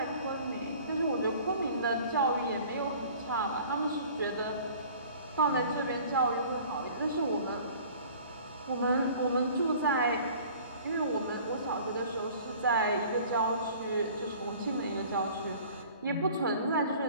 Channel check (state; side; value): inverted; both; correlation -0.48